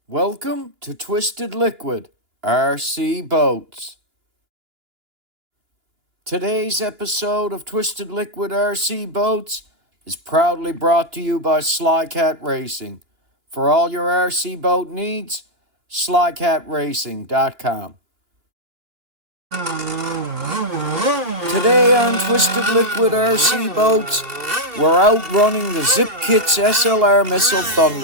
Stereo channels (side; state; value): left; late; 2.9 ms